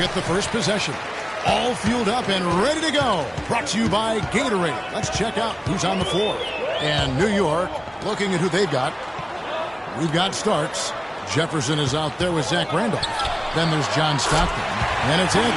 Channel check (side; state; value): both; identical; correlation 1.00